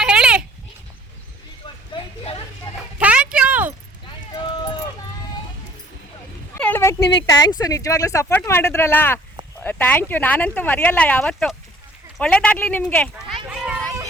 ಹೇಳಿ. ಥ್ಯಾಂಕ್ ಯು ಹೇಳ್ಬೇಕು ನಿಮಗೆ. ಥ್ಯಾಂಕ್ಸು, ನಿಜವಾಗ್ಲೂ ಸಪೋರ್ಟ್ ಮಾಡಿದ್ರಲ್ಲ, ಥ್ಯಾಂಕ್ ಯು. ನಾನಂತೂ ಮರೆಯಲ್ಲ ಯಾವತ್ತು. ಒಳ್ಳೇದಾಗಲಿ ನಿಮಗೆ.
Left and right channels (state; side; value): normal; both; correlation 0.56